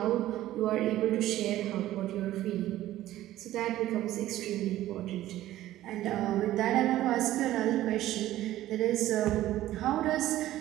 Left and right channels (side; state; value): left; quieter; 14.4 dB